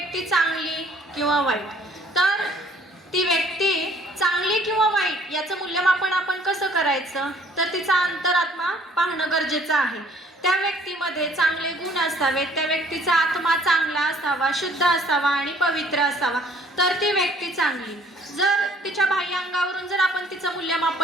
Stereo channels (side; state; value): both; normal; correlation 0.58